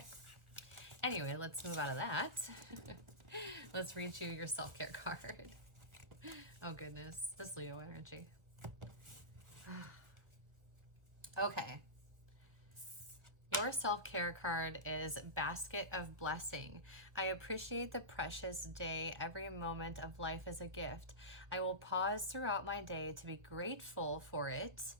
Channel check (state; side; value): late; left; 1.5 ms